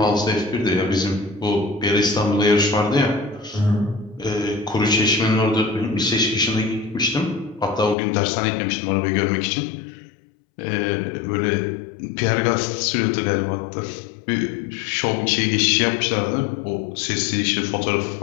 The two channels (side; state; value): right; drops out; at 8.0 s